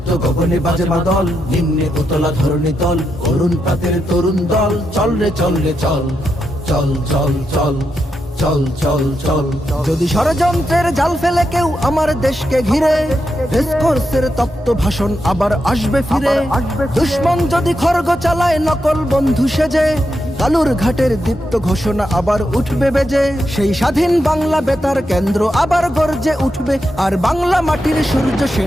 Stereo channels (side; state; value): both; normal; correlation 0.85